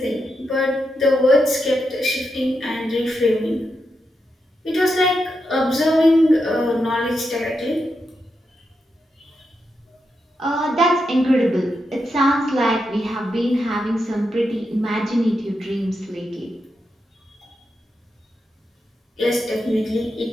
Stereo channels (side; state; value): both; normal; correlation 0.85